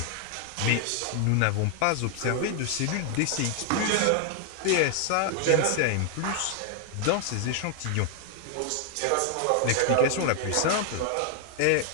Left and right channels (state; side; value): different; both; correlation 0.00